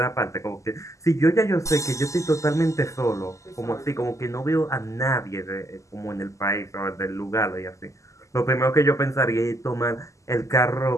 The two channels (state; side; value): late; right; 0.16 ms